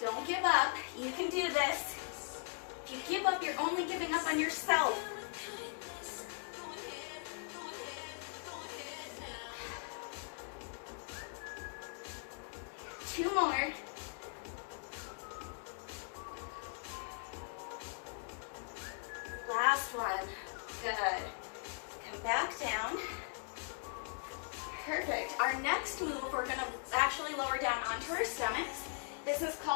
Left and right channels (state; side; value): silent; right; 51 dB below the other